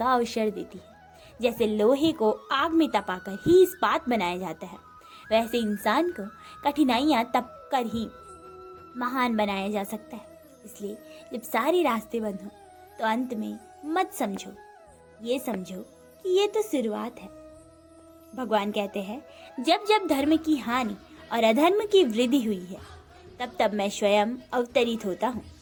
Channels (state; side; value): identical; both; correlation 1.00